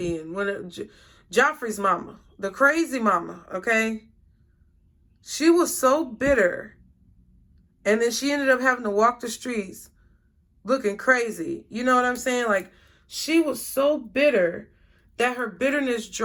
Joffrey's mama. The crazy mama, okay? She was so bitter. And then she ended up having to walk the streets looking crazy. You know what I'm saying? Like, she was so bitter that her bitterness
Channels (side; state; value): both; identical; correlation 1.00